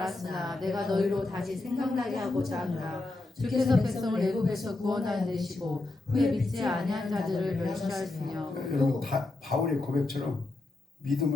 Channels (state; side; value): quieter; right; 3.0 dB